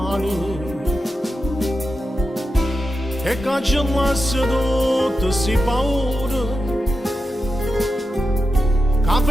e cancellasse tutte si paure che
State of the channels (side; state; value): both; normal; correlation 0.89